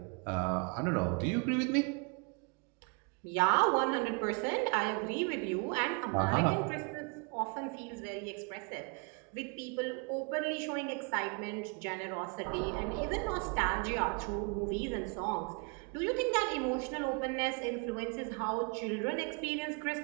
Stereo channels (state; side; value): quieter; left; 35.4 dB